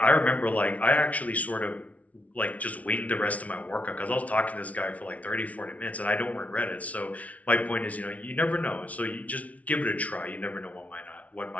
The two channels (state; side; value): late; right; 0.068 ms